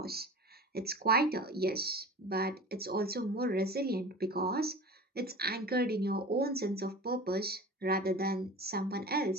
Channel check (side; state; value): both; normal; correlation 0.36